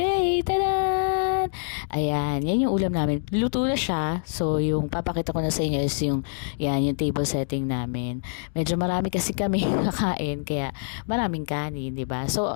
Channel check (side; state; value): right; silent; digital silence